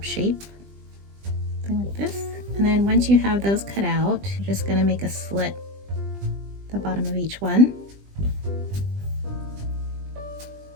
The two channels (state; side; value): late; left; 20 ms